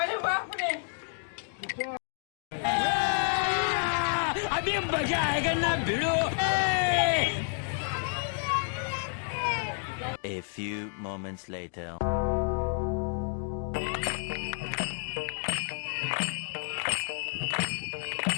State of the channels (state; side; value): silent; right; 58 dB below the other